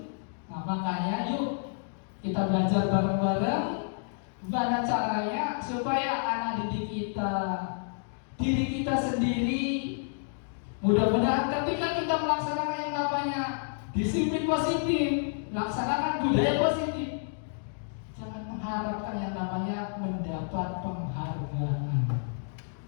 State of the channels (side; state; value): right; silent; digital silence